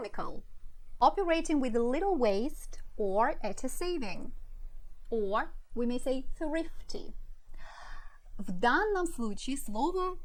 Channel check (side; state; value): both; identical; correlation 1.00